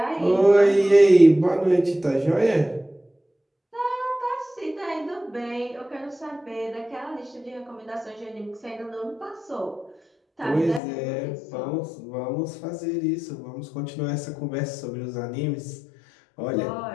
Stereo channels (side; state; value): right; drops out; at 10.8 s